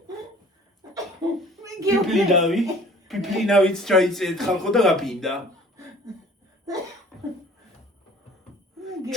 პიპლინავიც ჩაიწერეთ ხალხო და გაფინდა.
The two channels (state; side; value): normal; both; correlation 0.50